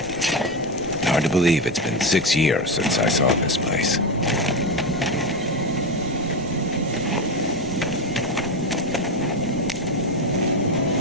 Hard to believe it's been 6 years since I saw this place.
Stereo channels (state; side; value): noise; right; rumble, 19 dB below the sound